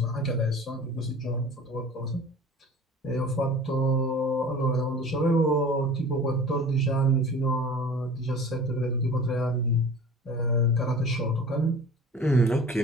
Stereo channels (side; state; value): both; normal; correlation 0.42